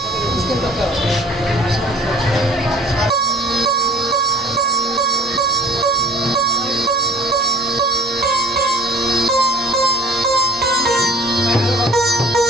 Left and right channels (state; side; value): normal; both; correlation 0.48